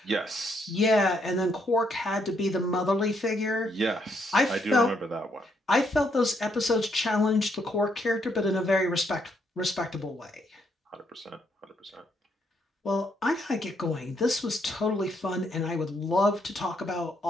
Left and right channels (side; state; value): both; normal; correlation 0.74